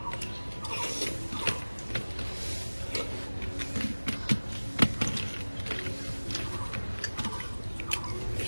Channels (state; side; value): inverted; both; correlation -1.00